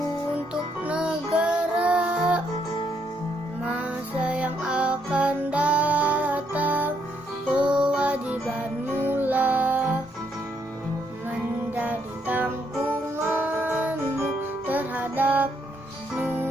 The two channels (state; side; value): normal; both; correlation 0.74